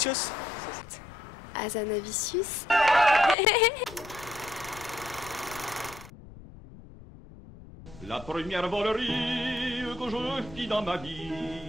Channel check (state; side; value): noise; left; rumble, 18 dB below the sound